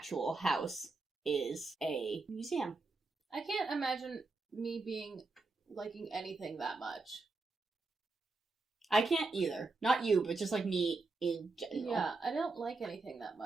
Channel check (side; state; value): left; quieter; 3.6 dB